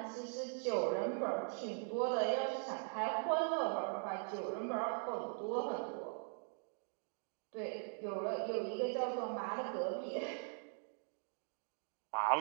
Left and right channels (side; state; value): left; silent; 50 dB below the other